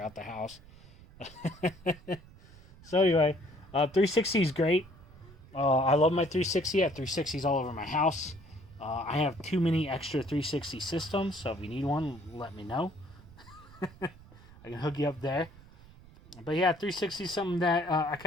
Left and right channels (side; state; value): right; noise; rumble, 21 dB below the sound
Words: the house. So, anyway, 360 is great. I love my 360. I have 360s all over my house. I have too many extra 360 systems, so if you need one, let me know. I can hook you up there. But yeah, 360 is something that I